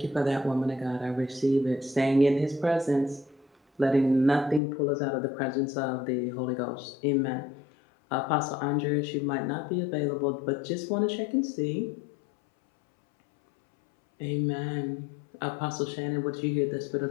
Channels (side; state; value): right; drops out; at 4.6 s